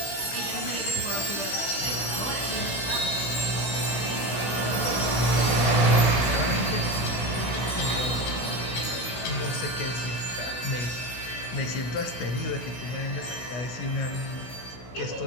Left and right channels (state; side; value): late; right; 16 ms